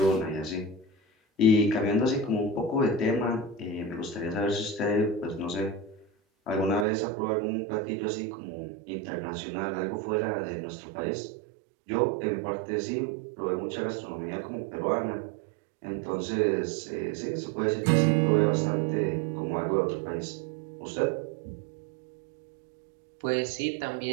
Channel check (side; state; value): left; drops out; at 6.9 s